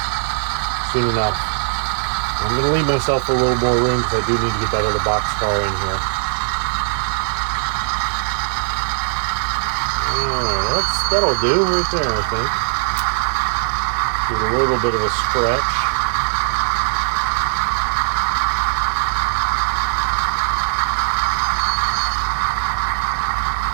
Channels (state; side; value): silent; left; digital silence